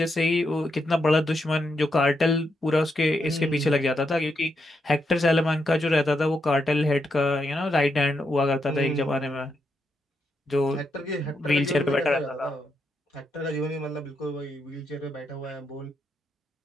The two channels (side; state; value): both; normal; correlation 0.82